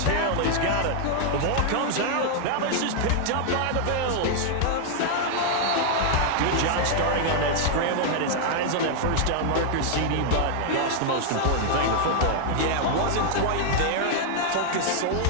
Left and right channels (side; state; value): both; different; correlation -0.01